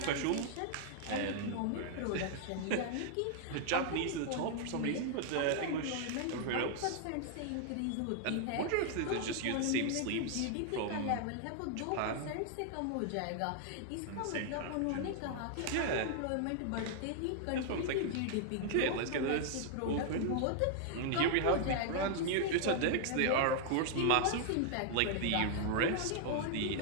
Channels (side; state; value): both; different; correlation 0.00